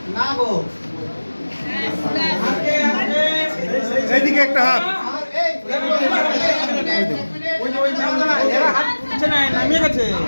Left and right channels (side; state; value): both; inverted; correlation -1.00